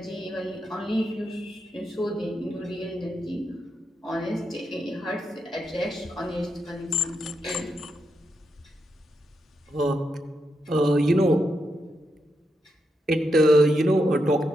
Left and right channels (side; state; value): both; normal; correlation 0.83